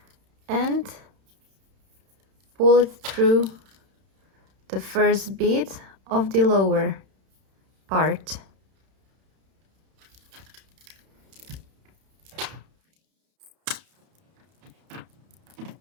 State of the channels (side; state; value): left; late; 31 ms